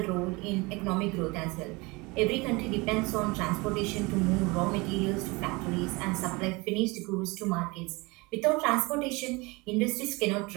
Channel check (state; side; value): quieter; left; 25.1 dB